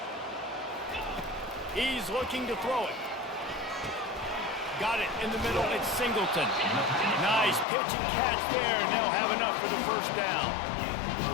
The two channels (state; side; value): drops out; right; at 7.7 s